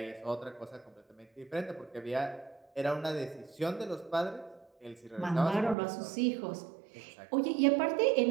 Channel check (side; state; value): left; drops out; at 5.8 s